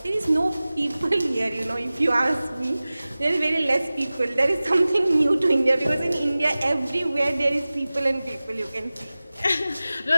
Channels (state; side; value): inverted; both; correlation -0.97